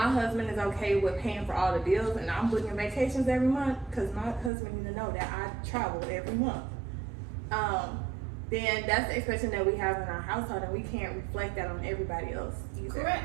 husband is okay with paying for all the bills and I'm booking vacations every month, because my husband needs to know that I travel every month, then that's the expectation that we have in our household, and we can't reflect that on everybody else either.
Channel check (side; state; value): left; drops out; at 4.5 s